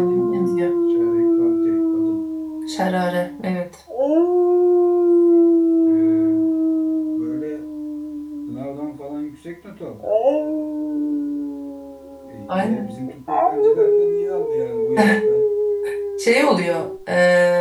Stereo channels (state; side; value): identical; both; correlation 1.00